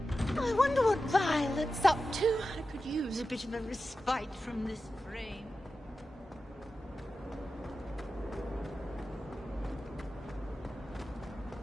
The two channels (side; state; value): both; normal; correlation 0.92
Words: a little I wonder what Violet's up to. I could use a bit of a respite from this frame.